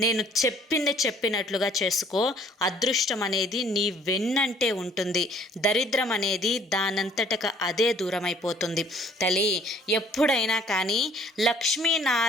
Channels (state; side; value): normal; both; correlation 0.58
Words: నేను చెప్పింది చెప్పినట్లుగా చేసుకో. అదృష్టం అనేది నీ వెన్నంటే ఉంటుంది, దరిద్రం అనేది దానంతటక అదే దూరమైపోతుంది. తల్లి, ఎప్పుడైనా కానీ